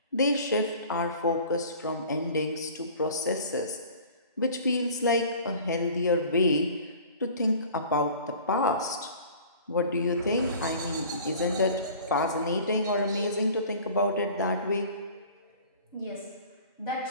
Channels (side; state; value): both; inverted; correlation -0.45